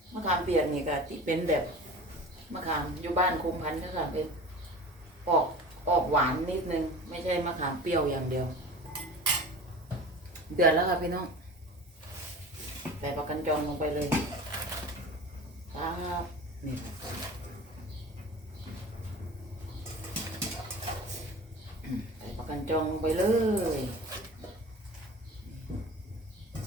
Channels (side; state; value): both; normal; correlation 0.37